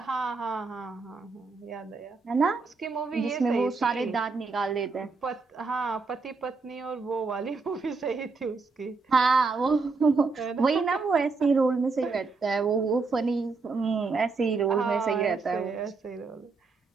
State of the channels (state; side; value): quieter; left; 4.2 dB